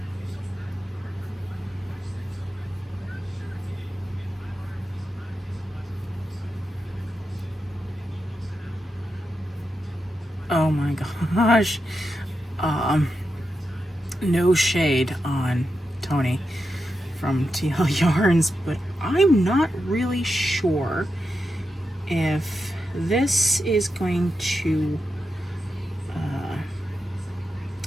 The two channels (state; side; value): normal; both; correlation 0.88